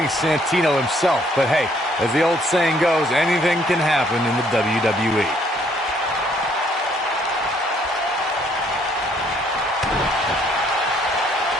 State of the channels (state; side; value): normal; both; correlation 0.65